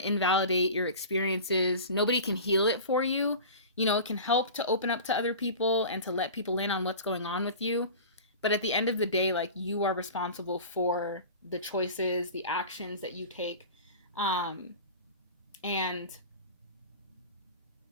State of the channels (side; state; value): both; inverted; correlation -0.36